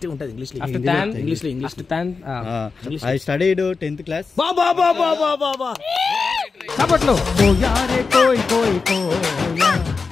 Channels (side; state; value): right; quieter; 4.6 dB